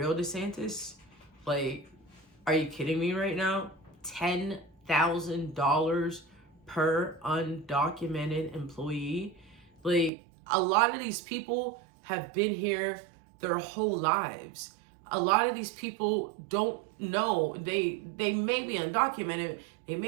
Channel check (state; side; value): drops out; left; at 10.1 s